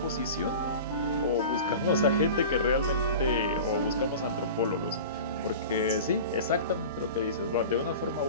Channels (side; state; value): both; inverted; correlation -0.35